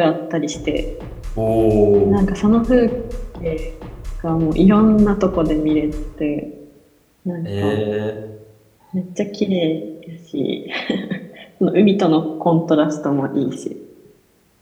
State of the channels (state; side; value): identical; both; correlation 1.00